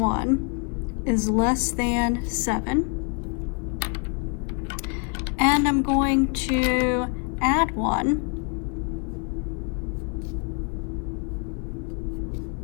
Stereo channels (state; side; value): quieter; right; 35.3 dB